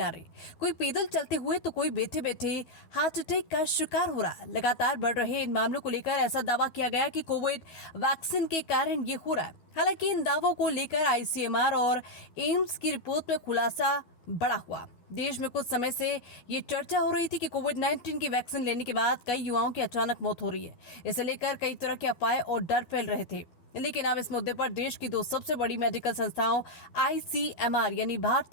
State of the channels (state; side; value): late; right; 12 ms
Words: आ रहे। कोई पैदल चलते हुए तो कोई बैठे बैठे हार्ट अटैक का शिकार हो रहा। लगातार बढ़ रहे इन मामलों को लेकर ऐसा दावा किया गया कि कोविड वैक्सीन के कारण ये हो रहा है। हालांकि इन दावों को लेकर आईसीएमआर और एम्स की रिपोर्ट में खुलासा बड़ा हुआ। देश में कुछ समय से ये चर्चा हो रही थी कि कोविड-19 की वैक्सीन लेने के बाद कई युवाओं की अचानक मौत हो रही है। इसे लेकर कई तरह के अफवाहें और डर फैल रहे थे। लेकिन अब इस मुद्दे पर देश की दो सबसे बड़ी मेडिकल संस्थाओं आईसीएमआर यानी